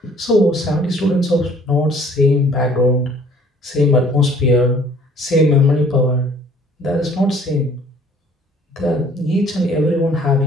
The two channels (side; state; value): both; normal; correlation 0.55